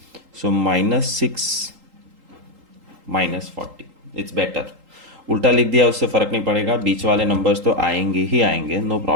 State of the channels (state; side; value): late; left; 3.8 ms